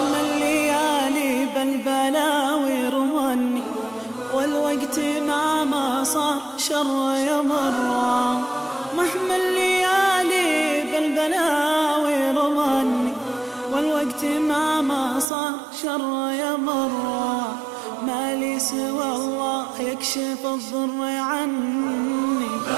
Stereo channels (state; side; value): drops out; left; at 15.2 s